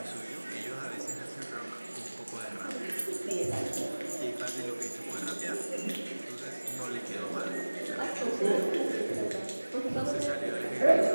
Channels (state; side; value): inverted; both; correlation -1.00